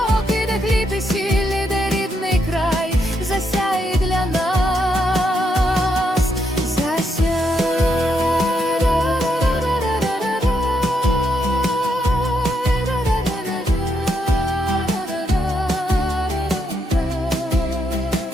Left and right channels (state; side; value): normal; both; correlation 0.78